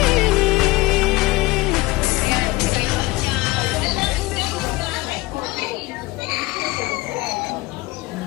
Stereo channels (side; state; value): right; quieter; 20.3 dB